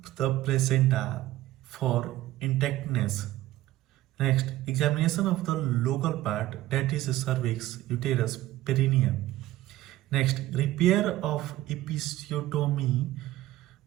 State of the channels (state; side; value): quieter; left; 15.7 dB